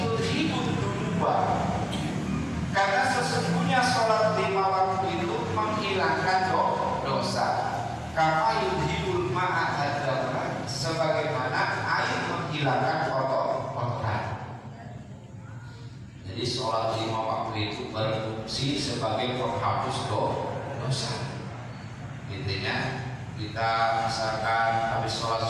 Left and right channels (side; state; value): both; identical; correlation 1.00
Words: dunuba." Karena sesungguhnya sholat 5 waktu itu menghilangkan dosa. Kama yudhibul ma'a adzabra, sebagaimana air menghilangkan kotoran. Jadi sholat 5 waktu itu berfungsi sebagai penghapus dosa. Intinya kita misalkan habis sholat